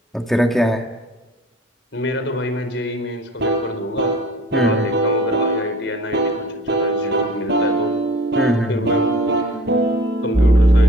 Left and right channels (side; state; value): both; normal; correlation 0.46